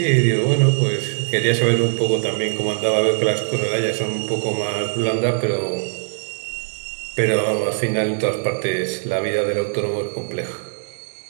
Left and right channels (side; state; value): left; silent; digital silence